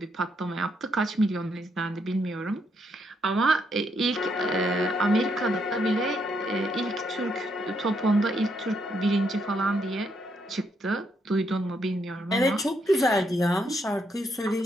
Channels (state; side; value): normal; both; correlation 0.76